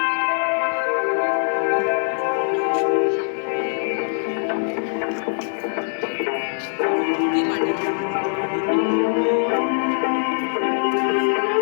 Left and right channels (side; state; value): right; silent; digital silence